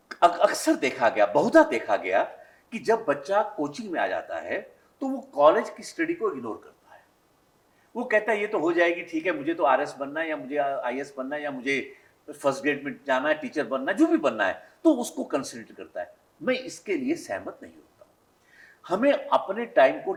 अक्सर देखा गया, बहुधा देखा गया कि जब बच्चा कोचिंग में आ जाता है तो वो कॉलेज की स्टडी को इग्नोर करता है। वो कहता है ये तो हो जाएगी, ठीक है, मुझे तो आरएस बनना है या मुझे आईएएस बनना है या मुझे फर्स्ट ग्रेड में जाना है, टीचर बनना है, जो भी बनना है, तो उसको कंसिडर करता है। मैं इसके लिए सहमत नहीं होता। हमें अपने टाइम को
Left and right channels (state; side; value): identical; both; correlation 1.00